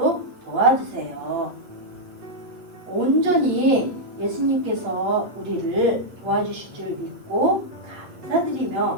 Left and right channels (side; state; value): left; late; 8.1 ms